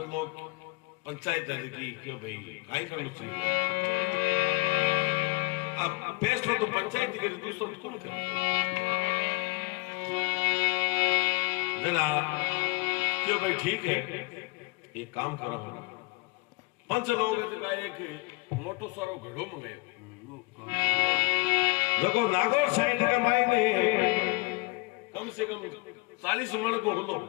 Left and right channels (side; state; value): right; quieter; 26.9 dB